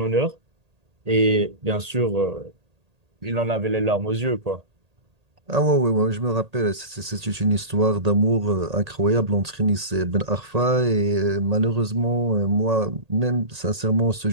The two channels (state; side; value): late; left; 1.8 ms